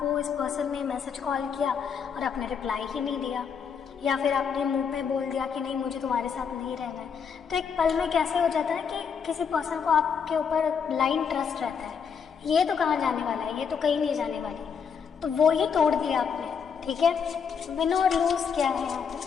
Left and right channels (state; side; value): quieter; right; 6.6 dB